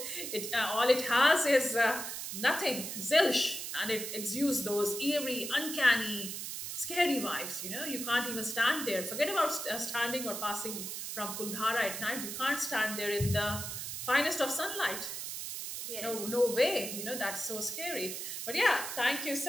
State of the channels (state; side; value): noise; right; hiss, 6 dB below the sound